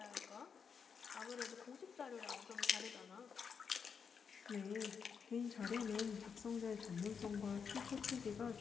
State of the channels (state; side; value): quieter; right; 6.3 dB